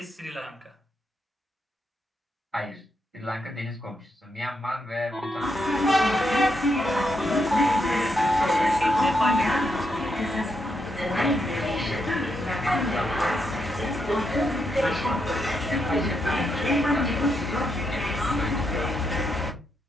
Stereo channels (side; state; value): both; normal; correlation 0.81